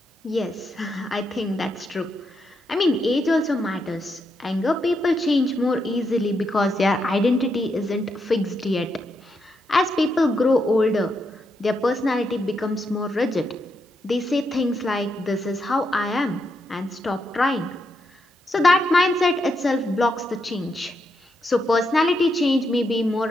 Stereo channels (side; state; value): both; normal; correlation 0.82